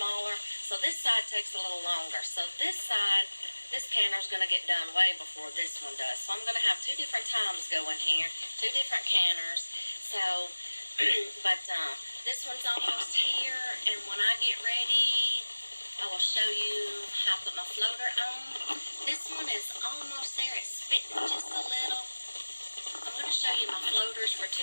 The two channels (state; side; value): inverted; both; correlation -1.00